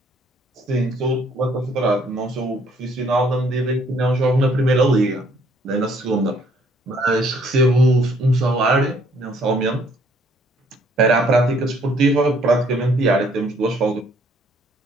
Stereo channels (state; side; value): normal; both; correlation 0.64